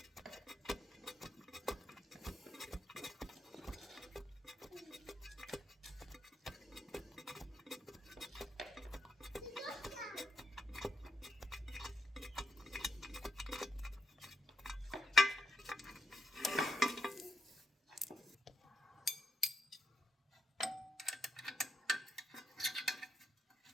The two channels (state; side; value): normal; both; correlation 0.78